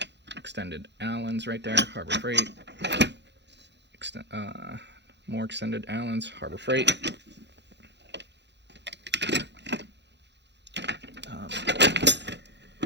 extended Allens right there, Harbor Freight. More extended Allens, Harbor Freight.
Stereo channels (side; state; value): left; late; 0.51 ms